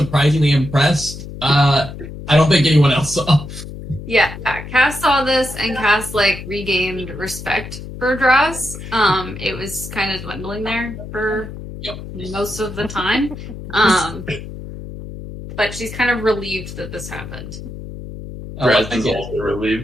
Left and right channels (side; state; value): left; noise; hum, 11 dB below the sound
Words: impressed. I don't think anyone else saw. Yeah, Cass saw this and Cass like regained respect for Draz. It was kind of dwindling there for most of the time. But she's kind of relieved that this happened. Draz I is get it. also